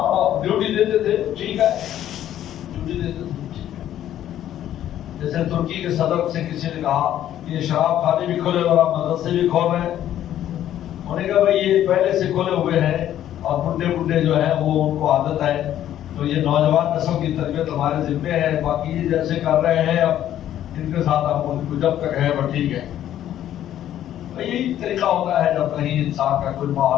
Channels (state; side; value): quieter; right; 11.7 dB